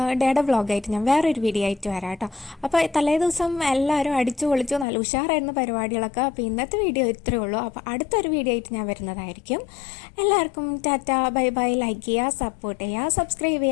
ഡേയുടെ വ്ളോഗായിട്ട് ഞാൻ വേറൊരു വീഡിയോ ആയിട്ട് വരാം കേട്ടോ. അപ്പോൾ തലേദിവസം എല്ലാവരും അടിച്ചു പൊളിച്ചു, നല്ല ഉഷാറായിരുന്നു പരിപാടികളൊക്കെ. അപ്പോൾ ഇന്നത്തെ വീഡിയോ ഇത്രയേ ഉള്ളൂ. അപ്പോൾ അടുത്തൊരു വീഡിയോ ആയിട്ട് ഞാൻ വരുന്നതായിരിക്കും. എല്ലാവർക്കും ടാറ്റ, ബൈ ബൈ. ലൈക്ക് ചെയ്യുക, സപ്പോർട്ട് ചെയ്യുക, സബ്സ്ക്രൈബ്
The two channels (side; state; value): right; drops out; at 4.9 s